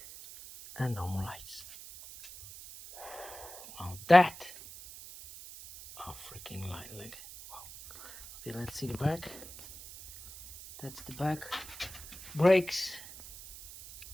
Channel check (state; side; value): noise; right; hiss, 15 dB below the sound